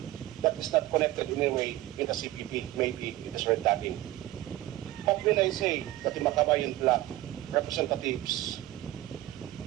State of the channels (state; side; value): quieter; left; 16.0 dB